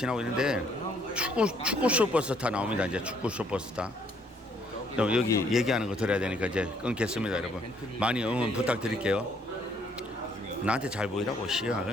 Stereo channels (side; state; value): both; normal; correlation 0.66